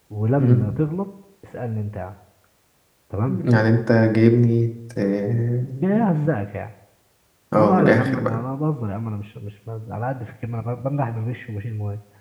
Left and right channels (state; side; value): identical; both; correlation 1.00